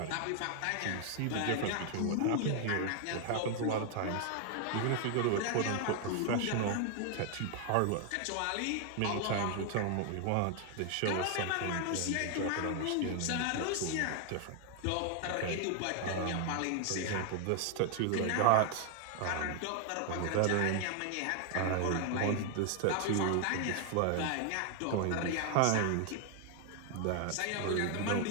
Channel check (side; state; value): both; different; correlation 0.00